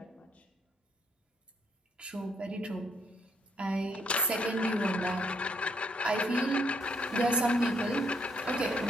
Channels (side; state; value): both; normal; correlation 0.71